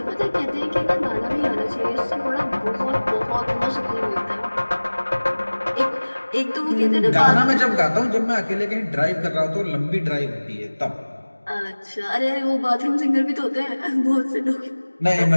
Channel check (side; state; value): both; inverted; correlation -1.00